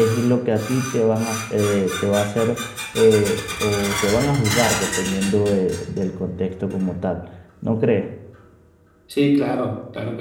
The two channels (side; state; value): both; identical; correlation 1.00